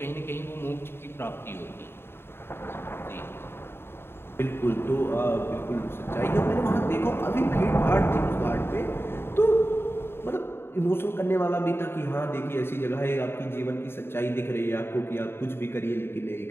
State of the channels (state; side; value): late; right; 0.11 ms